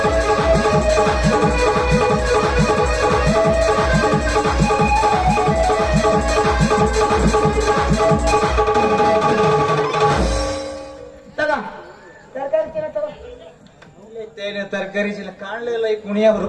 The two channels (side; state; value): both; identical; correlation 1.00